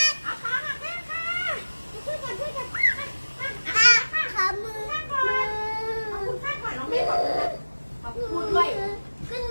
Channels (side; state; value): both; inverted; correlation -1.00